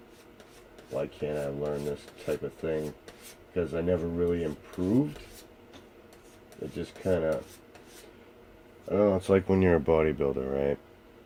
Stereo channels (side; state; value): both; identical; correlation 1.00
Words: why can't I learn this type of thing? Because I never really improved. It just kind of, I don't know, it's like when you're a bodybuilder, right?